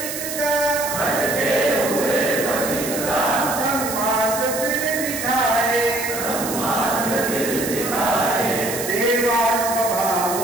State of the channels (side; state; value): right; noise; hiss, 6 dB below the sound